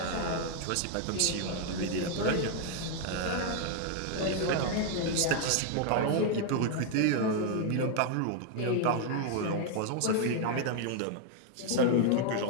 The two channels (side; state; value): both; different; correlation 0.00